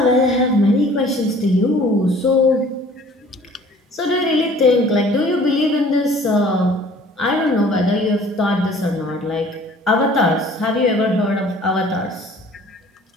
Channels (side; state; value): both; normal; correlation 0.51